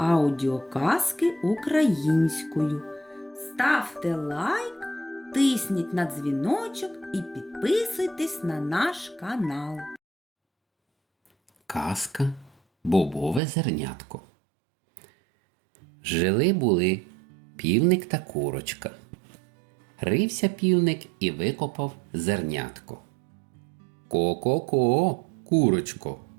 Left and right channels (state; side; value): drops out; left; at 13.4 s